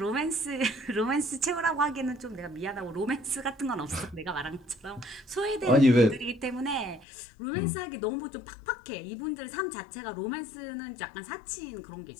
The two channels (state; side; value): drops out; right; at 7.1 s